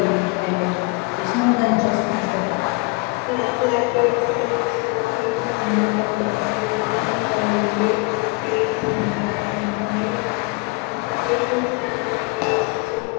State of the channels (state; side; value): quieter; right; 27.2 dB